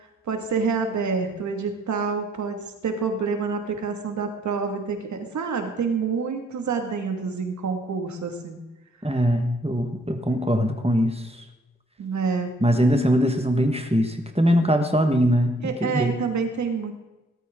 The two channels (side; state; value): both; normal; correlation 0.64